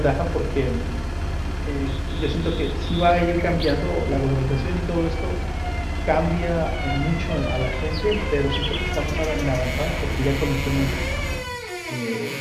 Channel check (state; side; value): identical; both; correlation 1.00